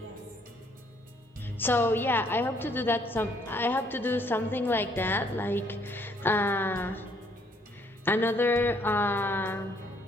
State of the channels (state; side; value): normal; both; correlation 0.65